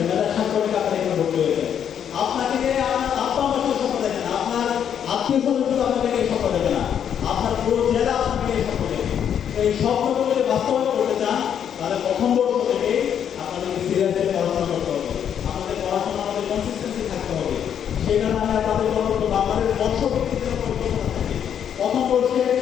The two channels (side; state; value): right; quieter; 8.8 dB